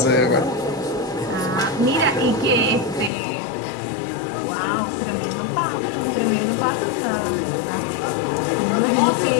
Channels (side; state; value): right; drops out; at 3.1 s